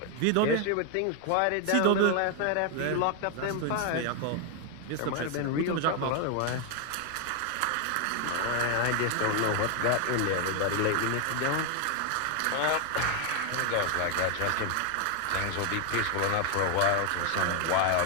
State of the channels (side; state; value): both; different; correlation 0.00